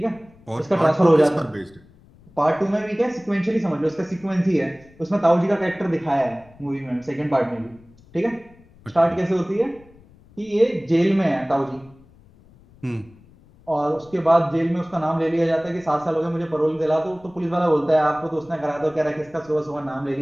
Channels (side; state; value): left; noise; rumble, 27 dB below the sound